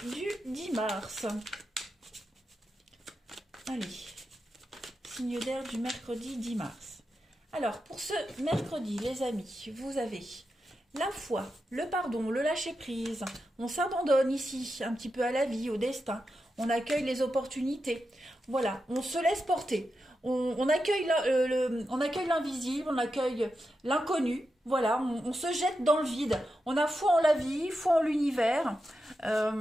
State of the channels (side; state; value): both; normal; correlation 0.88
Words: du 10 mars. Allez, signe d'air du mercredi 10 mars. Alors, pour ce mercredi, les amis, vous avez la foi, le pardon, le lâcher-prise. On s'abandonne ici un petit peu à la vie, au destin. On accueille les opportunités. Voilà, on se laisse porter. On accueille l'invisible, on accueille l'inconnu. Voilà, on se jette dans le vide. On a foi en la vie, foi en l'univers.